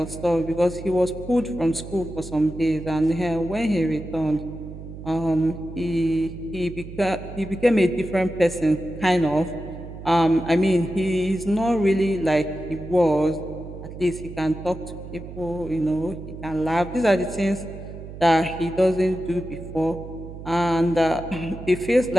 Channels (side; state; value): right; noise; hum, 12 dB below the sound